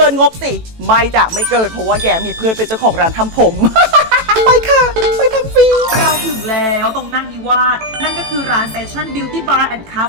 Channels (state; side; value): late; left; 18 ms